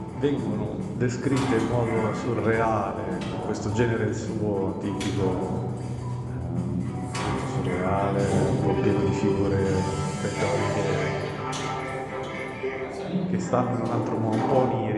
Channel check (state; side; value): identical; both; correlation 1.00